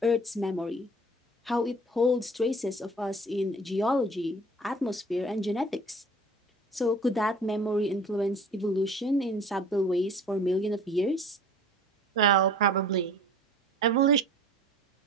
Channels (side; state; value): both; normal; correlation 0.46